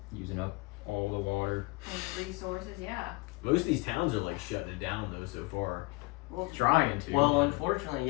using up all the water. resources. Yeah. Most of these towns are like shutting it down though so far. Well, Trying to. Well, unfortunately,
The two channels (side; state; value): right; quieter; 23.5 dB